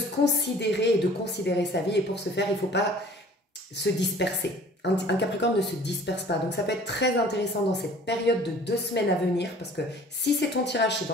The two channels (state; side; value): normal; both; correlation 0.50